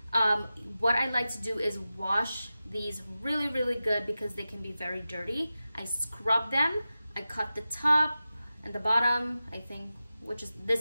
What I like to do is wash these really good because they can be very dirty. I scrub them. I cut the top and the bottom. I think,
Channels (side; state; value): both; inverted; correlation -0.93